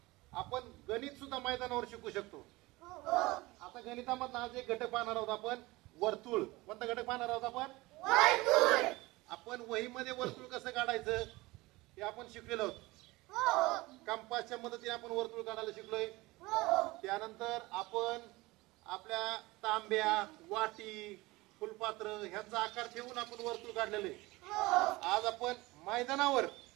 आपण गणित सुद्धा मैदानावर शिकू शकतो. आता गणितामधला आज एक घटक पाहणार आहोत आपण, वर्तुळ. कोणता घटक पाहणार आहोत आपण? वर्तुळ. आपण वहीमध्ये वर्तुळ कसं काढायचं हे आपण शिकलेलो आहोत. कंपासच्या मदतीने आपण वर्तुळ काढायला शिकलोय. त्यानंतर आपण आपल्या तांब्या, वाटी, फुलपात्र ह्यांचा आकार ठेवून आपण वर्तुळ काढलेले. आज आपण मैदानावर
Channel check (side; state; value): left; quieter; 21.2 dB